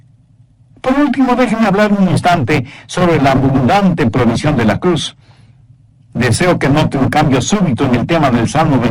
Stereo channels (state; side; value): identical; both; correlation 1.00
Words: Por último, déjenme hablar un instante sobre la abundante provisión de la cruz. Deseo que note un cambio súbito en el tema del Salmo